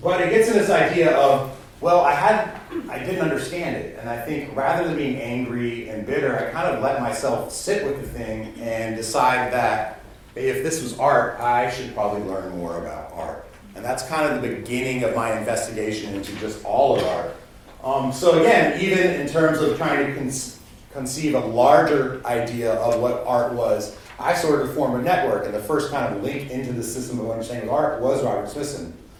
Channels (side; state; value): both; identical; correlation 1.00